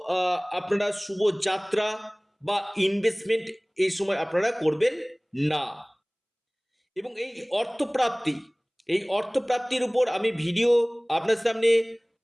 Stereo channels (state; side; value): identical; both; correlation 1.00